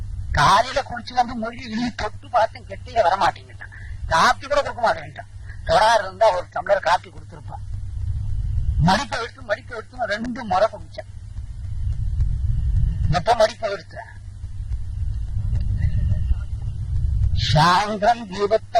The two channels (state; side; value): identical; both; correlation 1.00